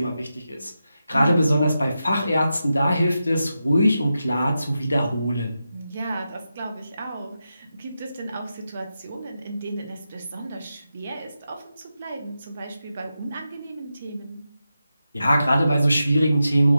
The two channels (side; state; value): both; inverted; correlation -0.89